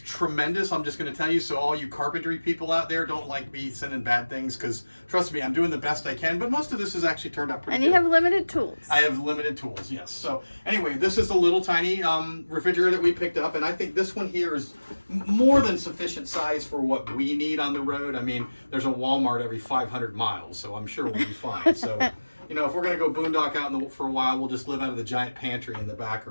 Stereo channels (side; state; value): both; inverted; correlation -1.00